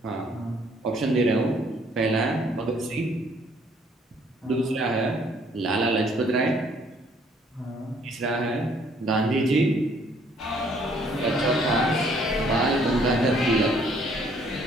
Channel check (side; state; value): both; normal; correlation 0.63